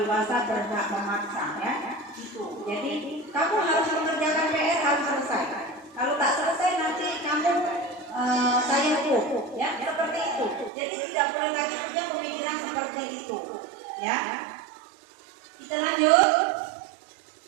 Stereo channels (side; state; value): left; drops out; at 10.7 s